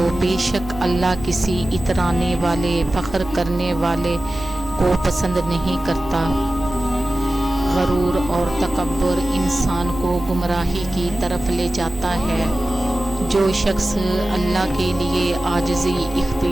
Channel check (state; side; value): normal; both; correlation 0.95